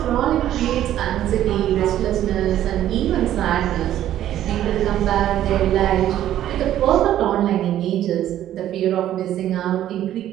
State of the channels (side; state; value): left; quieter; 12.1 dB